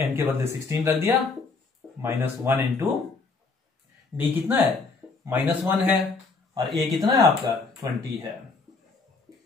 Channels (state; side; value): quieter; right; 4.2 dB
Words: के बदले 16 रख दिया, -1 इंटू d कितना है, -1 है, और a कितना है आपका 20 है,